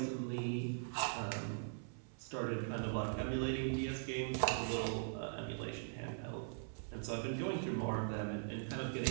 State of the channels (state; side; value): silent; left; 50 dB below the other